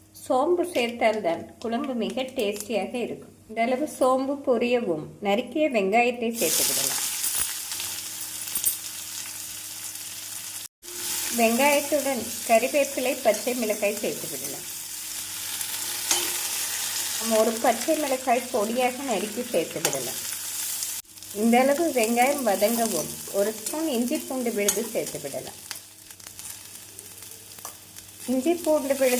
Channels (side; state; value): both; identical; correlation 1.00